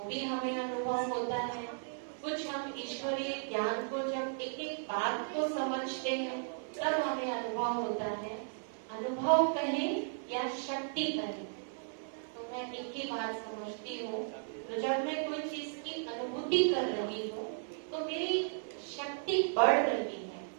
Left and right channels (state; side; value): silent; left; digital silence